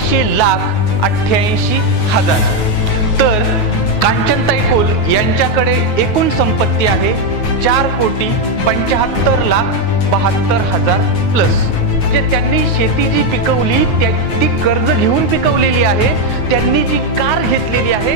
लाख 88 हजार। तर कांचनताई कुल यांच्याकडे एकूण संपत्ती आहे 4 कोटी 75 लाख 72 हजार प्लस। जे त्यांनी शेती जी पिकवली ती कर्ज घेऊन पिकवलेली आहे, त्यांनी जी कार घेतलेली आहे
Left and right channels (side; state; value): right; late; 9.4 ms